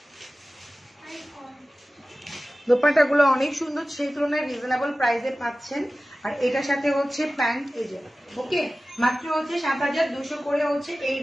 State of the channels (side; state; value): both; normal; correlation 0.96